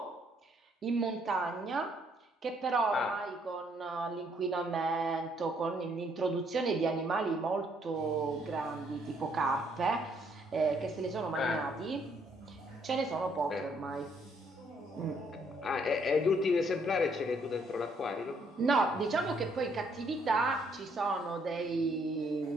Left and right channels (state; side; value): normal; both; correlation 0.68